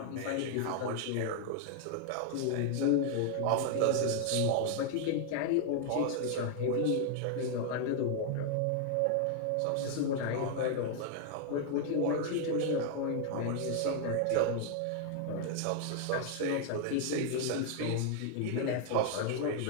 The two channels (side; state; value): both; different; correlation 0.00